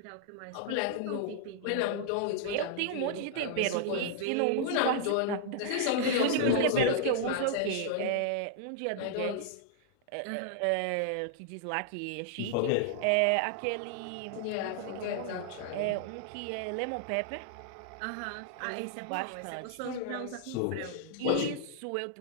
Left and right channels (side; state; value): both; different; correlation 0.00